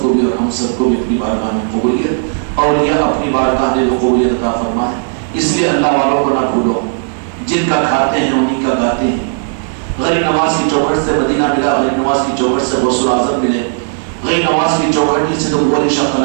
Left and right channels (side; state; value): left; silent; digital silence